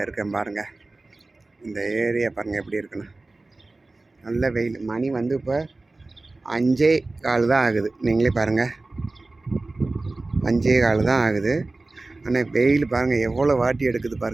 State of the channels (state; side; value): quieter; left; 3.2 dB